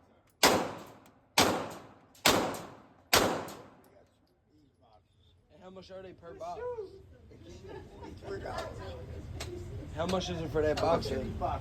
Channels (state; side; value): identical; both; correlation 1.00